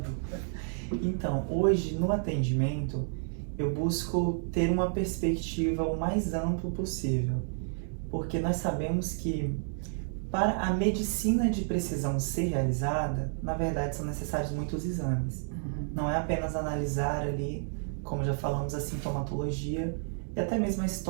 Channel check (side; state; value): left; silent; digital silence